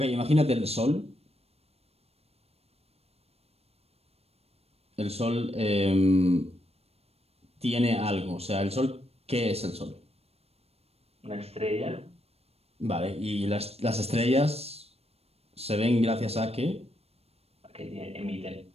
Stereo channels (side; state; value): left; late; 0.29 ms